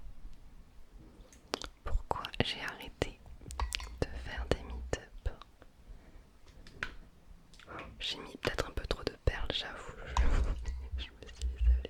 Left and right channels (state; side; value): identical; both; correlation 1.00